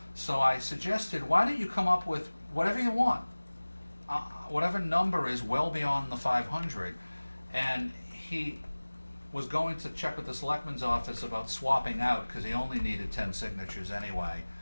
So I suggested, why don't you come up with whatever you want, whatever number is well beyond the 500, and he was going to check with the selectman's office about swapping out, because he only needed 10 signatures anyway.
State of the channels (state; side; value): inverted; both; correlation -1.00